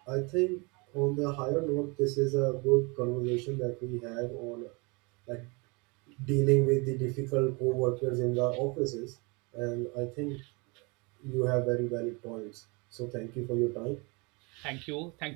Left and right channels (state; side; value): quieter; left; 29.4 dB